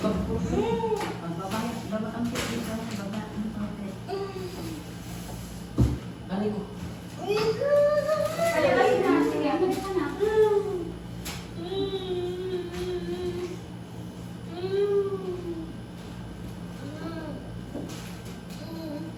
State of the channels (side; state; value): both; identical; correlation 1.00